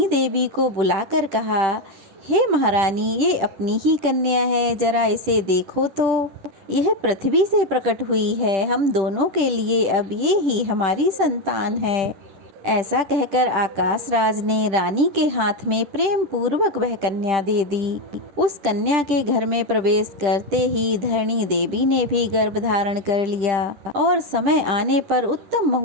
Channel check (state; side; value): late; left; 10 ms